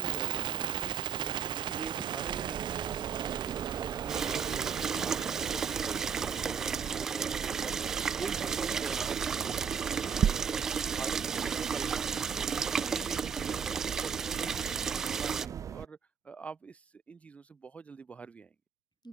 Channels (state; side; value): quieter; left; 7.0 dB